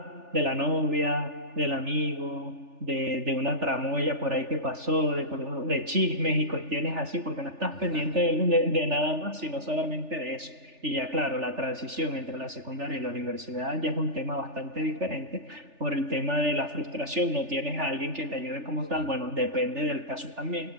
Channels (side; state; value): left; late; 3.4 ms